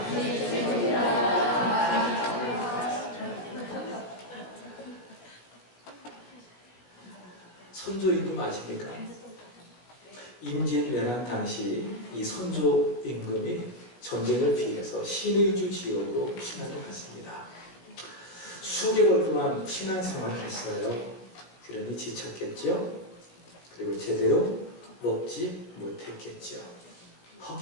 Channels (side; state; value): right; late; 17 ms